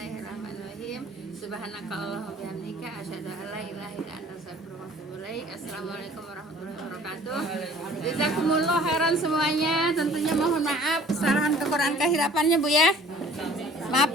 Subhanaka Allahumma bihamdika asyhadu an la ilaha illa anta astaghfiruka wa atubu ilaik. Assalamualaikum warahmatullahi wabarakatuh. Jazakumullah khairan semuanya. Tentunya mohon maaf kesalahan kekurangan kehirapannya Bu ya.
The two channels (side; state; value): both; normal; correlation 0.51